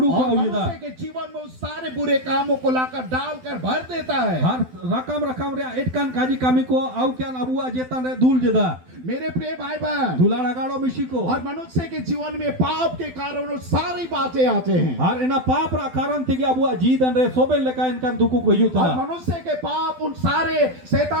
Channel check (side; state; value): left; late; 12 ms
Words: ko और ujida मनुष्य के जीवन में उस सारे बुरे कामों को लाकर डालकर भर देता है। har rakam re et kan kaji kami ko au kyan abu jetan re dul jeda मेरे प्रिय भाई बहन, dula ragalo misiko और मनुष्य के जीवन में पाप के कारण वो सारी बातें आते हैं। har ena pap ra karan tigi abu jidan re soben leka in kan duku ko और yutana मनुष्य के पाप उन सारे